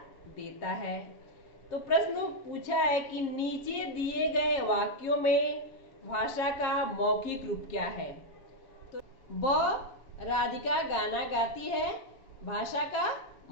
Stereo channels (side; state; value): right; late; 7.4 ms